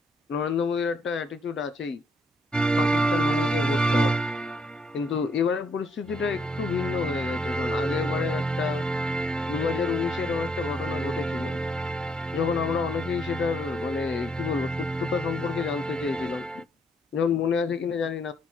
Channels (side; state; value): both; normal; correlation 0.72